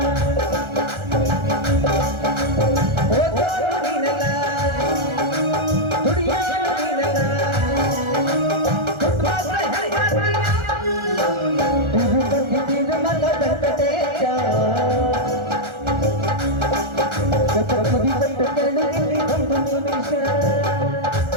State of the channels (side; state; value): left; late; 1.4 ms